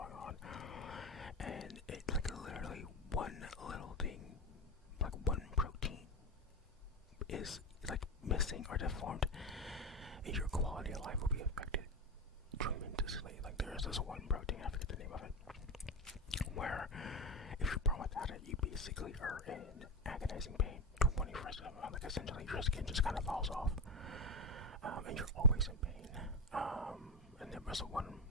on, and it like literally one little thing, like one protein is like missing or deformed, and your quality of life will be affected tremendously. Like there is this one protein, I forget the name of it, where if you're born without it, you basically are in agonizing pain 24/7. Like essentially your skin just kind of falls off, and you're always in pain. And there was one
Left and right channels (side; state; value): both; normal; correlation 0.16